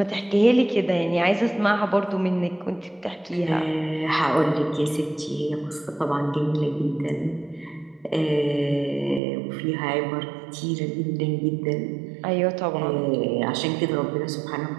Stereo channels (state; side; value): drops out; left; at 9.2 s